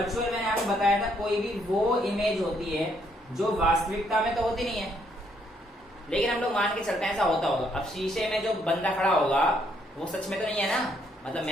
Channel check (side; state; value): both; normal; correlation 0.71